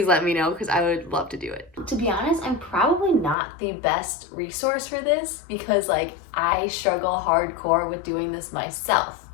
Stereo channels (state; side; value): drops out; right; at 3.4 s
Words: let me know because I would love to do it. To be honest, I'm probably not the best resource for this because I struggle hardcore with doing this myself.